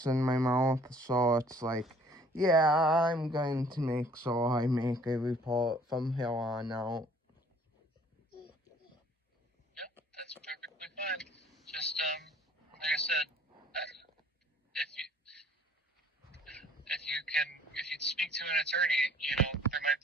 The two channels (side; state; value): both; normal; correlation 0.56